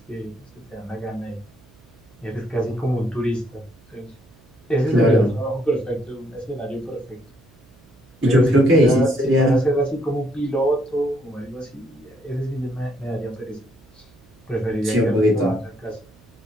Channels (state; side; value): noise; right; hum, 28 dB below the sound